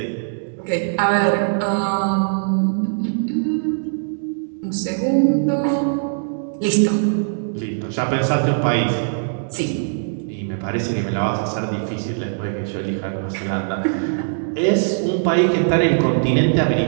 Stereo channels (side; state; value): left; silent; digital silence